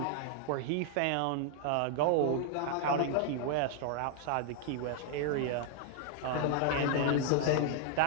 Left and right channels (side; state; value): both; different; correlation 0.00